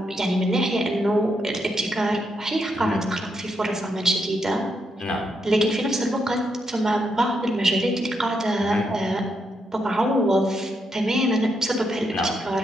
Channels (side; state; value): both; normal; correlation 0.80